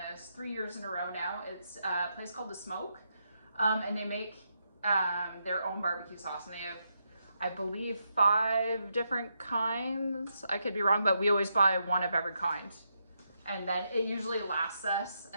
3 years in a row now. It's a place called The Smoke, and they make their own barbecue sauce, and they have, I believe, 5 different kinds. I could be wrong, but we always buy one of every kind, and then it usually lasts us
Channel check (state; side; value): inverted; both; correlation -0.82